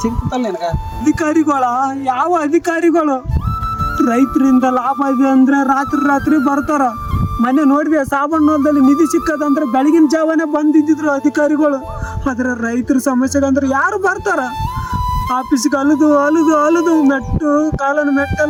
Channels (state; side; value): identical; both; correlation 1.00